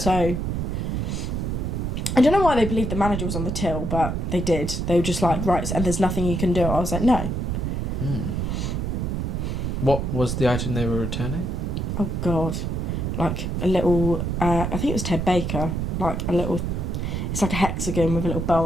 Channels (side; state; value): right; noise; rumble, 1 dB below the sound